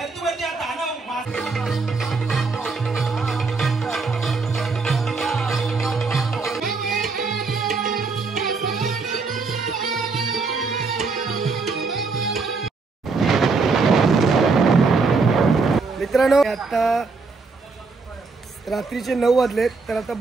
हा दानव मित्रांनो आता रात्रीचे 9 वाजलेत तर आता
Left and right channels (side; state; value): left; quieter; 4.3 dB